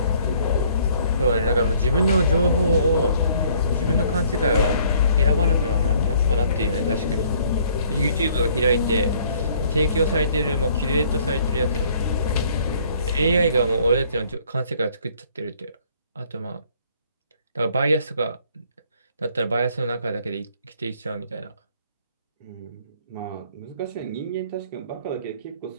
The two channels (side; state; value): both; inverted; correlation -0.60